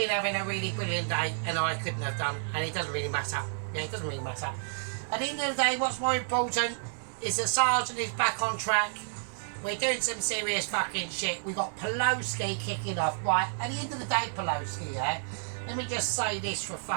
having a really brilliant day and I couldn't have done, and it doesn't really matter. Yeah, it doesn't really matter. At the end of the day, what's more important is that Sergeant is back on track. We're doing some serious fucking shit. We got Pelosi kicking off. Right, at the end of the day, Pelosi, yeah, let me just say this for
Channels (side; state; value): left; silent; digital silence